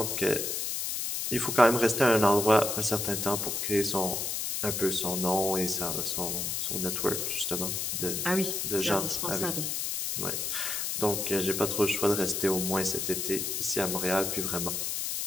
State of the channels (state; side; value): noise; left; hiss, 1 dB below the sound